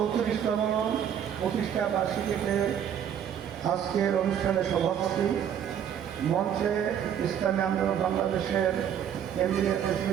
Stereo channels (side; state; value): left; quieter; 9.1 dB